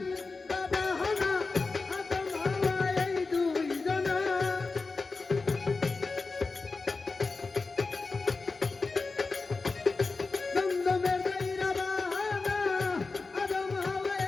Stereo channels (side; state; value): right; quieter; 4.0 dB